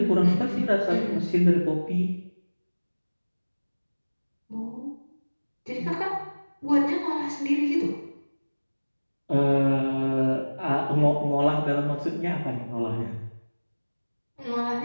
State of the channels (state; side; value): inverted; both; correlation -1.00